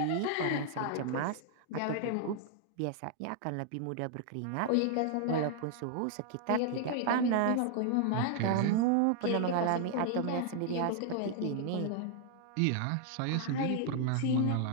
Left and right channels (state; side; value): different; both; correlation -0.01